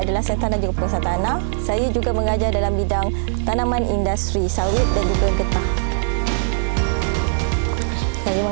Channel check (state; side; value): silent; left; 66 dB below the other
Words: adalah sains tanah dan juga pengurusan tanah, saya juga mengajar dalam bidang tanaman industri, sawit dan juga getah. Saya